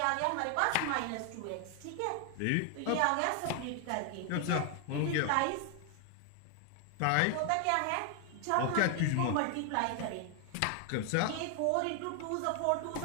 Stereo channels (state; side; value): different; both; correlation 0.00